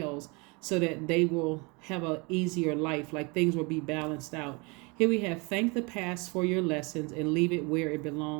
so that they will have an easier life. Things will be balanced out. Here we have thank the past for your lessons and leave it where it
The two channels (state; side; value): quieter; left; 29.0 dB